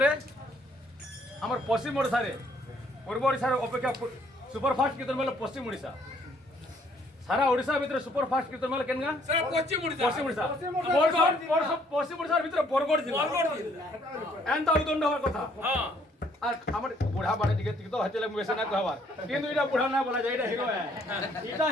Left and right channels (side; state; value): both; normal; correlation 0.65